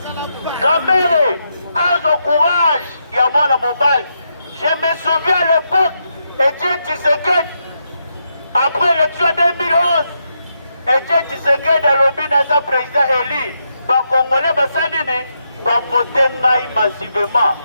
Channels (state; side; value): inverted; both; correlation -0.82